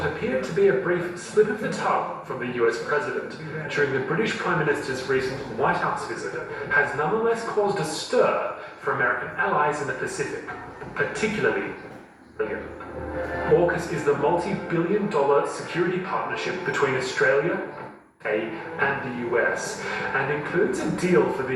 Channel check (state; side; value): identical; both; correlation 1.00